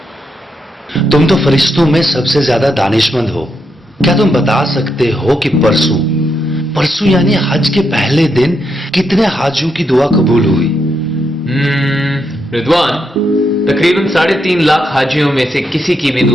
तुम तो फरिश्तों में सबसे ज्यादा दानिशमंद हो। क्या तुम बता सकते हो कि परसों यानी हज के पहले दिन कितने हाजियों की दुआ कबूल हुई? रिदवान, तकरीबन 3.5 लाख हाजियों में से किसी की भी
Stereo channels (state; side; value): normal; both; correlation 0.81